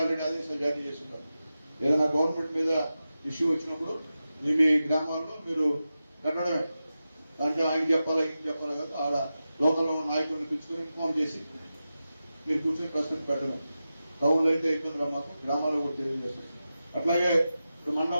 ఆల్రెడీ ఆదేశాలు జారీ చేస్తున్నారు. ఏదైనా గవర్నమెంట్ మీద ఇష్యూ వచ్చినప్పుడు మీ గ్రామాల్లో మీరు పెట్టడమే. దాంట్లో ఆయన చెప్పాలా ఈయన చెప్పాలా కాదు, ఆడ లోకల్ నాయకులను పిలుచుకొని ఇన్ఫార్మ్ చేసి మీరు కూర్చొని ప్రశ్న పెట్టడం. టౌన్లో అయితే ఇబ్బంది మాకు, గ్రామాల్లో కూడా తెలియజేస్తాం. అట్లాగే ఇప్పుడు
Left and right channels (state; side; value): inverted; both; correlation -0.92